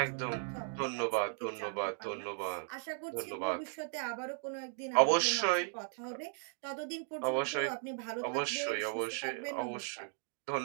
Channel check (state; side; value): silent; left; 53 dB below the other